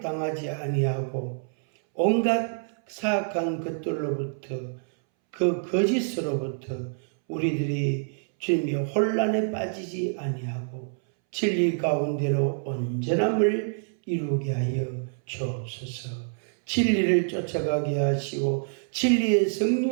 아니하고 온갖 사악한 것들로부터 그 거짓으로부터 우리들이 주님의 혼란에 빠지지 아니하고 진리 가운데로 온전함을 이루게 하여 주옵소서. 진리를 쫓아가게 하시고 진리의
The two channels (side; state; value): left; silent; 60 dB below the other